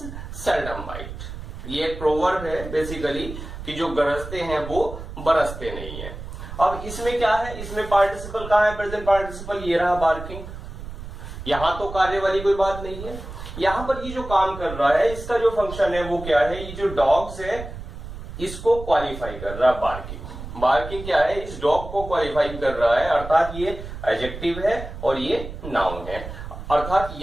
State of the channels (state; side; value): noise; right; rumble, 10 dB below the sound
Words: seldom bite, ये एक प्रोवर्ब है बेसिकली कि जो गरजते हैं वो बरसते नहीं है। अब इसमें क्या है, इसमें पार्टिसिपल कहां है, प्रेजेंट पार्टिसिपल, ये रहा बार्किंग। यहां तो कार्य वाली कोई बात नहीं है। यहां पर ये जो काम कर रहा है इसका जो फंक्शन है वो क्या है, ये जो डॉग्स है इसको क्वालिफाई कर रहा है बार्किंग। बार्किंग क्या है, इस डॉग को क्वालिफाई कर रहा है, अर्थात ये एडजेक्टिव है और ये नाउन है। अर्थात